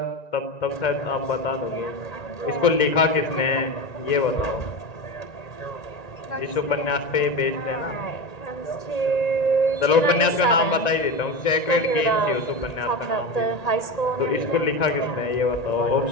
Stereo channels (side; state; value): right; late; 1.9 ms